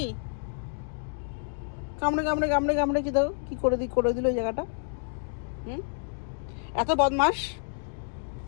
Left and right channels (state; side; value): silent; right; digital silence